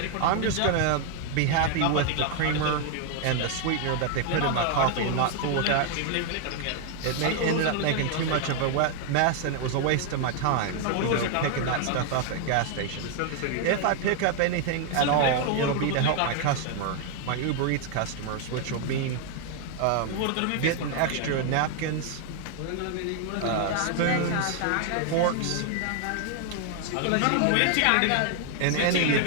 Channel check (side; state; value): both; different; correlation 0.00